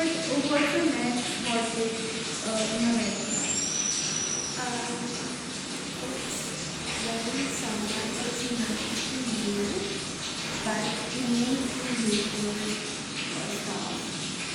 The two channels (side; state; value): both; identical; correlation 1.00